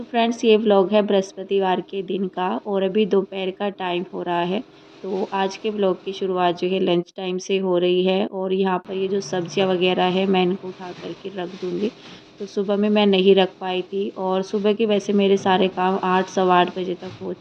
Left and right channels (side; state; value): both; identical; correlation 1.00